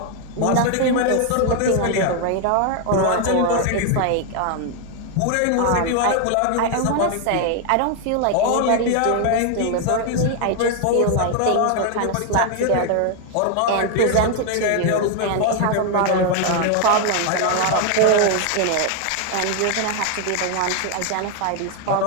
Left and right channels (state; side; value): different; both; correlation 0.00